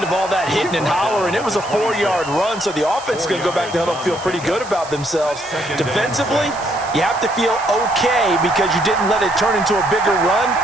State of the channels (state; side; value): noise; right; hiss, 16 dB below the sound